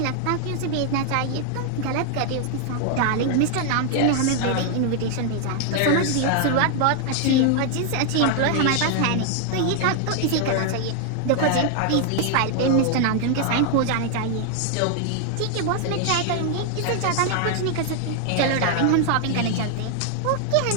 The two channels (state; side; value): different; both; correlation 0.00